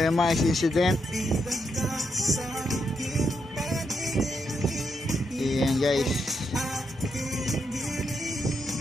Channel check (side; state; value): both; normal; correlation 0.80